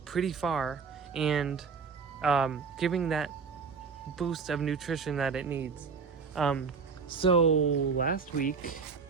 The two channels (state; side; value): quieter; left; 5.5 dB